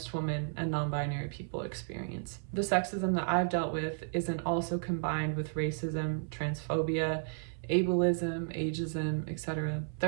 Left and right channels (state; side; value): silent; left; 56 dB below the other